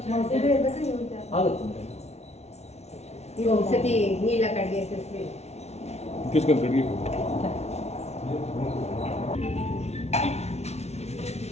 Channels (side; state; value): right; late; 0.31 ms